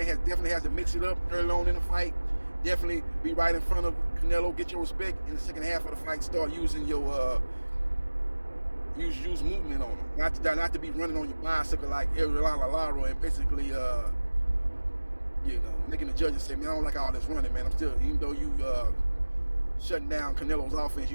definitely has to mix it up early on in the fight. Definitely be right in front of Canelo, get your respect in the second half of the fight. Start using your use movement on him. Not to be running on your bicycle like Ariel Lara and basically making the judges say, man, I don't like all this running, man. I'm still, even though you shutting down Canelo's offense,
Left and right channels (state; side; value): inverted; both; correlation -1.00